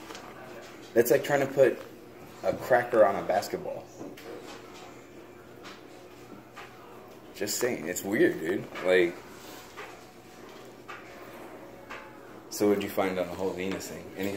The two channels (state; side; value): identical; both; correlation 1.00